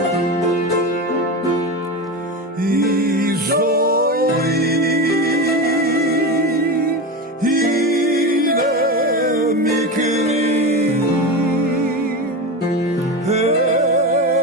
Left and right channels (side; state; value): both; normal; correlation 0.21